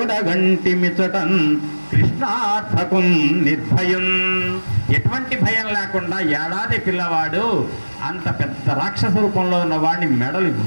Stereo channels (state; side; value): inverted; both; correlation -1.00